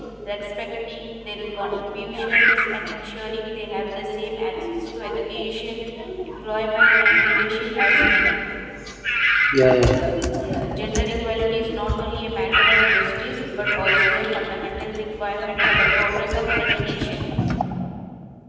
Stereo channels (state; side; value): identical; both; correlation 1.00